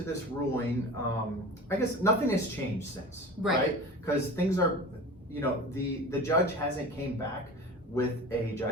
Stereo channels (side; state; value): both; normal; correlation 0.35